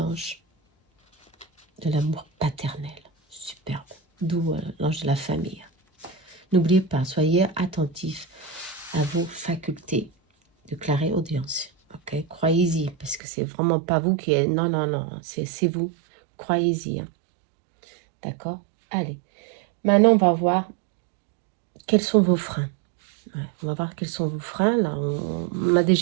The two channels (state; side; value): drops out; left; at 13.2 s